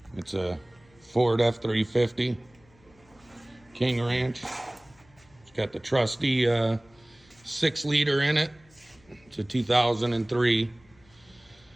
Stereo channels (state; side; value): noise; left; hum, 30 dB below the sound